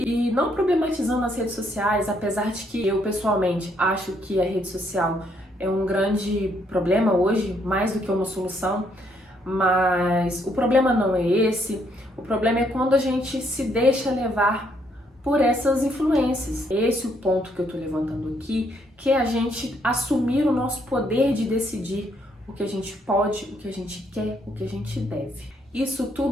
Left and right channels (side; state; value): both; normal; correlation 0.71